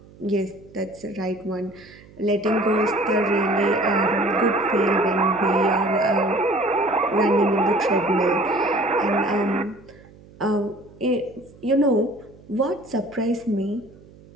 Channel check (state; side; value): noise; right; hum, 23 dB below the sound